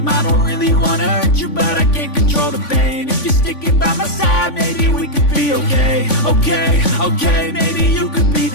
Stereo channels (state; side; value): late; right; 3.5 ms